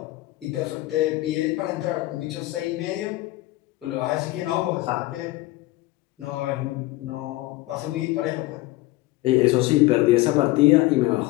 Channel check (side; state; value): right; quieter; 18.7 dB